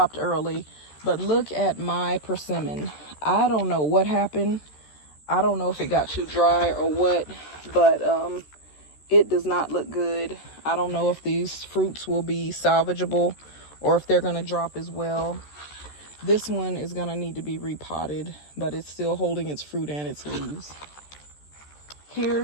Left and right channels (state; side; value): late; right; 13 ms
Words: early. But look at my persimmon. I don't know what happened. I don't know if it got too dry or what. But it does not look good. I don't know if these fruits will be salvageable or if they're going to drop as well. This one is going to need to be repotted, but it's still holding its fruit and its leaves.